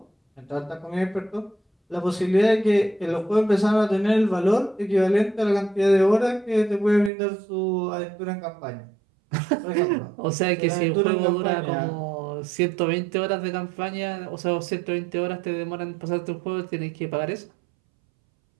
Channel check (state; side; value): drops out; left; at 7.1 s